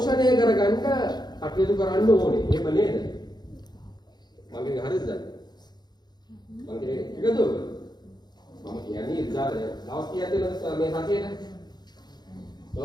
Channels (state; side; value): late; right; 0.20 ms